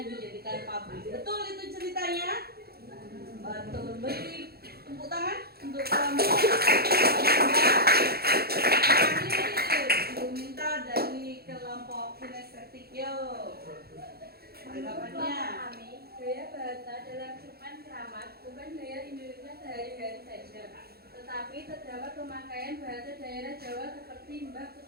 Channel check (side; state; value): left; late; 0.46 ms